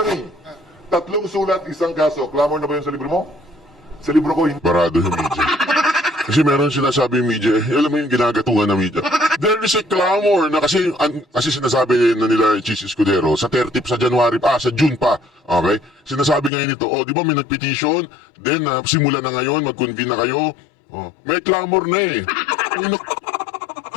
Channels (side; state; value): right; drops out; at 16.5 s